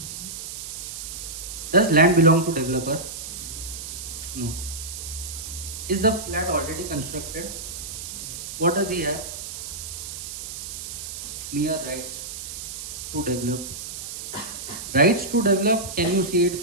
Does land belong to developer? No. Is the flat already constructed? What does he have? Mere rights to develop. Rights to develop, can you see it,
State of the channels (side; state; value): right; noise; hiss, 8 dB below the sound